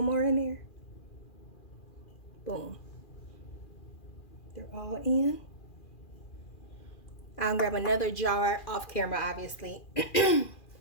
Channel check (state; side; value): late; right; 2.4 ms